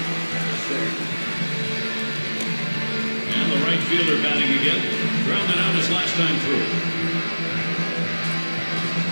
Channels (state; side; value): inverted; both; correlation -1.00